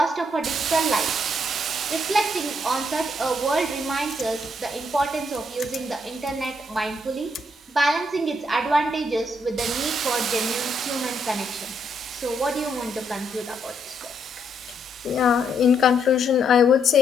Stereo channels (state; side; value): normal; both; correlation 0.74